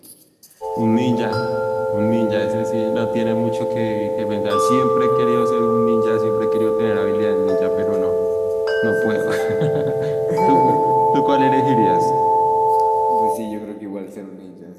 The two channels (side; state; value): both; identical; correlation 1.00